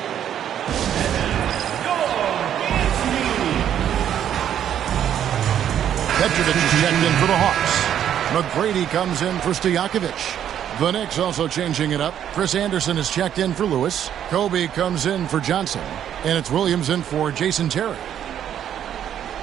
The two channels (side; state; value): left; quieter; 10.0 dB